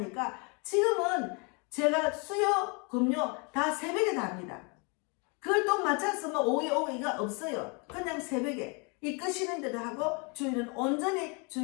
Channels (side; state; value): right; quieter; 32.9 dB